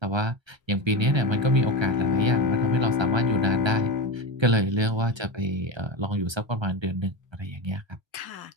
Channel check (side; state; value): left; late; 1.3 ms